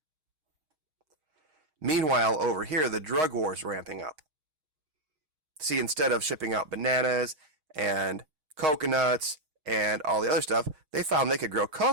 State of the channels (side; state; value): left; late; 6.4 ms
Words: Meanwhile, over here, the drug war is ramping up. See, instead of shipping out bananas and coconuts and all the other stuff, they found they could grow